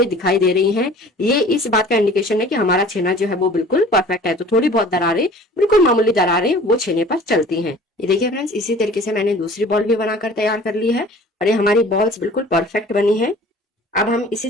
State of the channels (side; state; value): both; normal; correlation 0.46